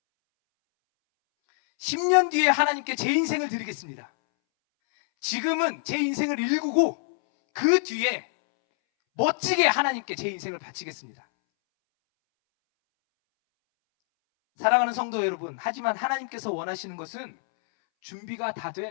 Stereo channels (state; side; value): silent; right; 61 dB below the other